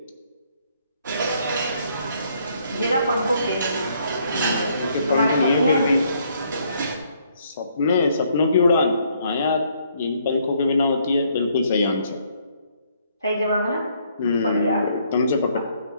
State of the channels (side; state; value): both; inverted; correlation -0.68